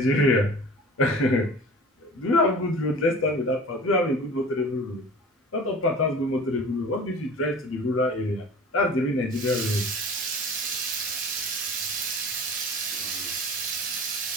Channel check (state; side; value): normal; both; correlation 0.40